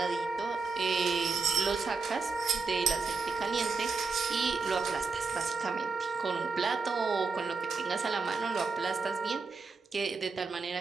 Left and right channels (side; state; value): left; quieter; 4.4 dB